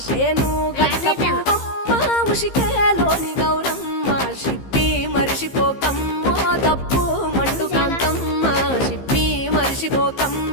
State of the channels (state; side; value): late; right; 15 ms